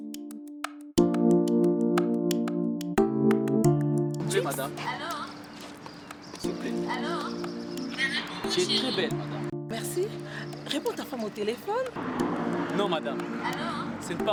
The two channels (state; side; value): identical; both; correlation 1.00